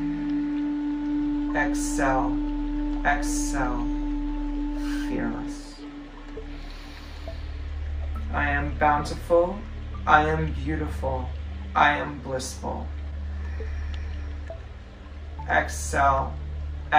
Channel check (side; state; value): both; identical; correlation 1.00